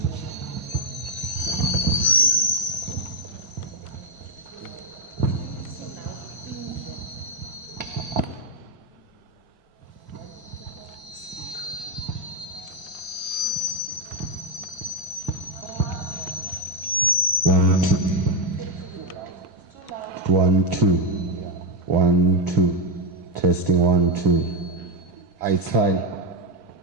One, two. 1, 2. Testing 1, 2. It's fine.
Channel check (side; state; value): both; normal; correlation 0.05